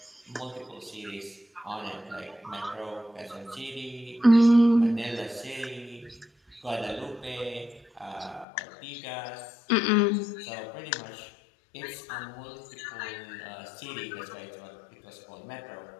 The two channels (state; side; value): drops out; right; at 8.5 s